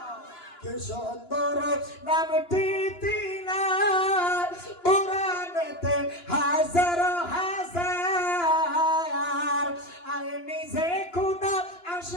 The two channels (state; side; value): late; right; 2.9 ms